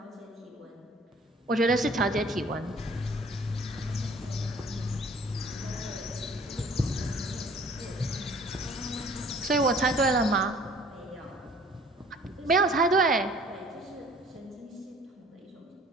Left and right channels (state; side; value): normal; both; correlation 0.53